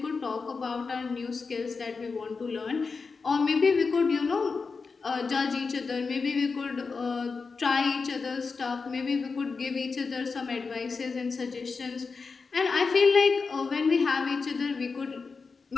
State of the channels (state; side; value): quieter; right; 4.7 dB